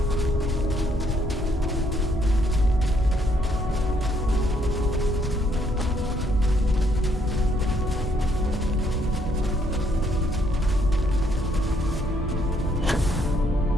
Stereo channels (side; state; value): both; normal; correlation 0.70